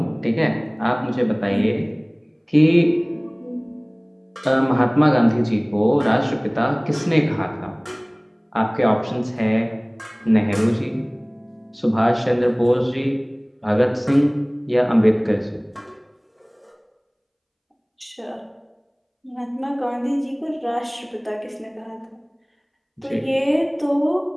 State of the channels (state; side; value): identical; both; correlation 1.00